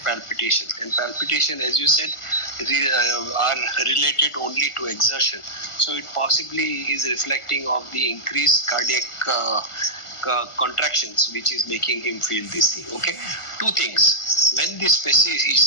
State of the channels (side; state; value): right; late; 1.4 ms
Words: palpitation. And palpitation, as you said, are related only to exertion. So, it possibly is reflecting of the increased cardiac contractions, which is making him feel this thing. Okay. 2 things. When the